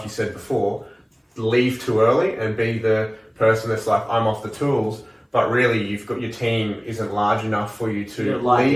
you said before, leave too early and be the person that's like, I'm off the tools, but really you've got your team isn't large enough for you to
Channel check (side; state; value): both; identical; correlation 1.00